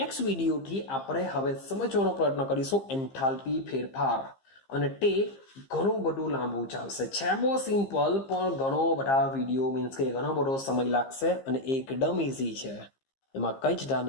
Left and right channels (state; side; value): late; right; 15 ms